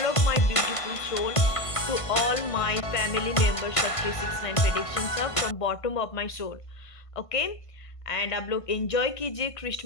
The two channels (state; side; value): late; right; 1.5 ms